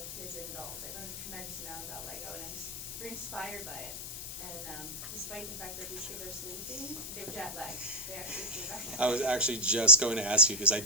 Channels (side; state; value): left; noise; hiss, 8 dB below the sound